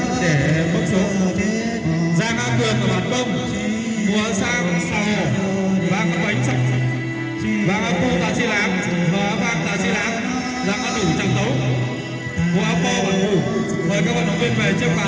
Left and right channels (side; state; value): both; identical; correlation 1.00